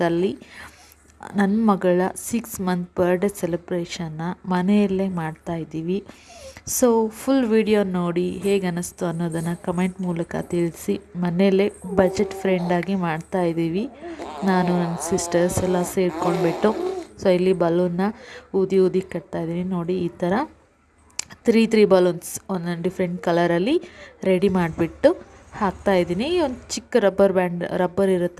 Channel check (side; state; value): both; identical; correlation 1.00